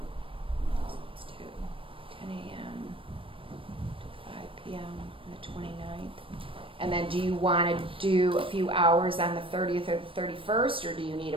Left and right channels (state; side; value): late; left; 0.25 ms